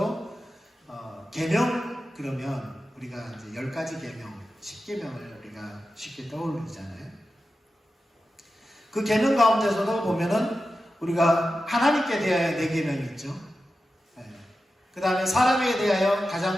계명 그러면 우리가 이제 10가지 계명, 10계명을 우리가 쉽게 떠올리잖아요. 그 계명 가운데서도 보면은 우리가 하나님께 대하여 4계명이 있죠. 그 다음에 사람에 대하여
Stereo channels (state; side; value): normal; both; correlation 0.92